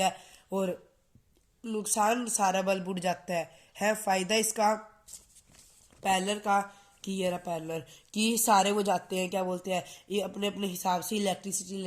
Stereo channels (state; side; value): identical; both; correlation 1.00